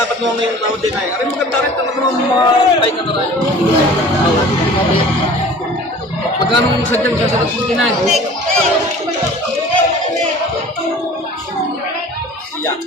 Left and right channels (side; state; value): both; normal; correlation 0.45